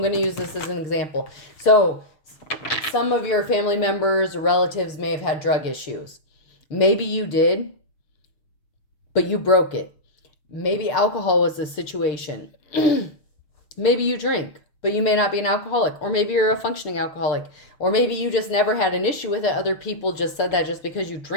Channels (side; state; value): right; late; 6.7 ms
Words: going to use this as an example. So some of your family members or relatives may have had drug issues. Maybe you did, but you broke it. Maybe alcohol was the situation. Maybe you drink, but you may not be an alcoholic. Or maybe you're a functioning alcoholic. Or maybe you just never had an issue with it. Other people just said that just because you